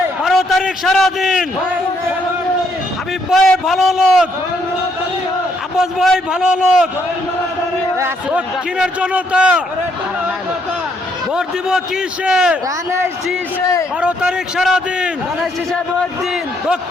12 তারিখ সারাদিন হাবিব ভাই ভালো লোক, আব্বাস ভাই ভালো লোক, দক্ষিণের জনতা ভোট দিব কিসে? 12 তারিখ সারাদিন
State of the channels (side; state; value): both; normal; correlation 0.72